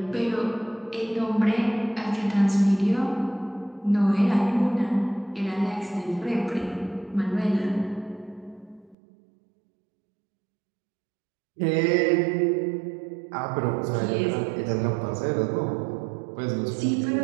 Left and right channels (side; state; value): left; drops out; at 9.0 s